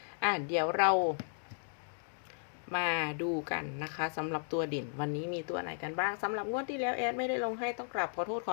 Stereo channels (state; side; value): silent; right; digital silence